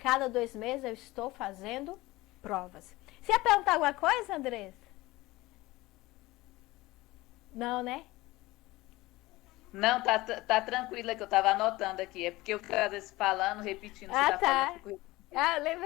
2 meses eu estou fazendo provas. Você ia perguntar alguma coisa, Andressa? Não, né? Não, tá tranquila que eu tava anotando aqui. É porque eu fico às vezes falando, repetindo, Ah, você tá tá. falando, fico Ah,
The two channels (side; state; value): right; quieter; 19.6 dB